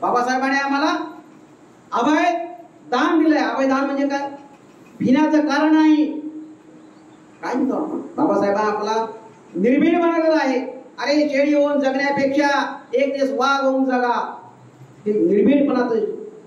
बाबासाहेबांनी आम्हाला अभय दान दिलंय. अभय दान म्हणजे काय? भिण्याचं कारण नाही. काय म्हणतो आपण? बाबासाहेबांना आपला निर्भीड बनवलेला आहे. अरे शेळी होऊन जगण्यापेक्षा एक दिवस वाघ होऊन जगा, हे निर्भीडपणाचं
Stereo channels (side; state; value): both; identical; correlation 1.00